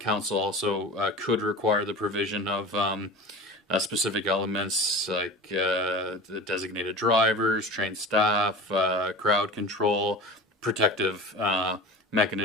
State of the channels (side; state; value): both; normal; correlation 0.33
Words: council also could require the provision of specific elements like the designated drivers, trained staff, crowd control, protective